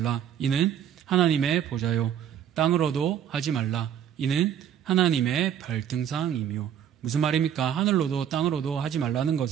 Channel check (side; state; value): left; quieter; 9.3 dB